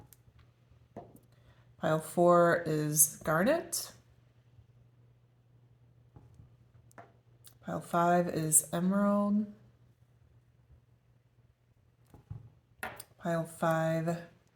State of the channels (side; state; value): both; identical; correlation 1.00